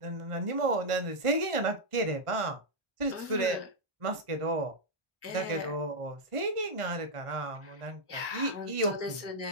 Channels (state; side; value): late; left; 1.4 ms